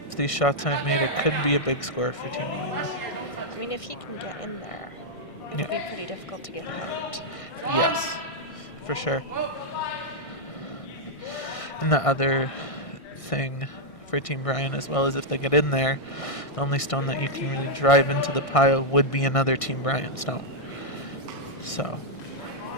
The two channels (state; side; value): late; right; 1.6 ms